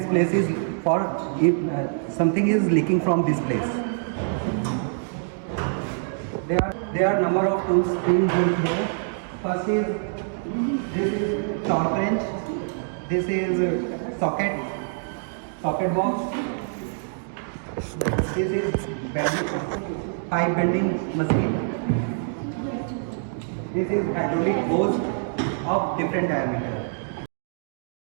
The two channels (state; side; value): silent; left; digital silence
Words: place is for if something is leaking from this place. There are number of tools being used here. First is this is torque wrench. This is socket box. This is pipe bending machine. This is hydraulic hose of different diameter.